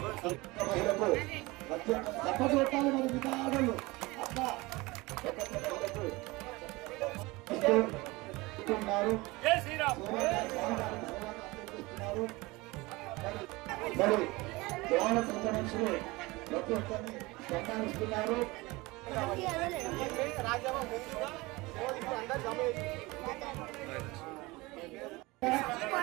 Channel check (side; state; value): left; quieter; 22.5 dB